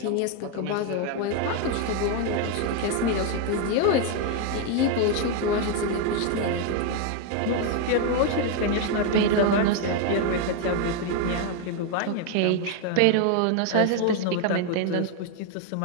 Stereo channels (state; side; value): different; both; correlation 0.01